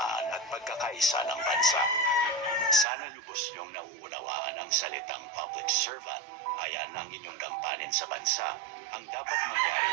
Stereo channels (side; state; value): left; drops out; at 2.9 s